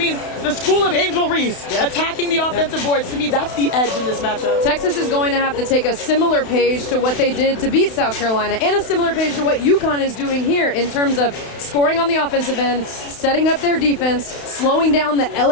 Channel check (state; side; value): late; right; 32 ms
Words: the school of Angel Reese, attacking the offensive boards, to me, that's the edge in this matchup. Texas is going to have to take a similar page to what they did to beat South Carolina, and a similar page to what UConn is doing here in terms of scoring on the offensive end, setting up their defense, slowing down the